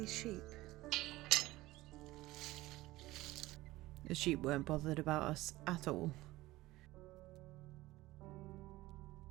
sheep. The sheep weren't bothered about us at all.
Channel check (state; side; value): quieter; left; 18.3 dB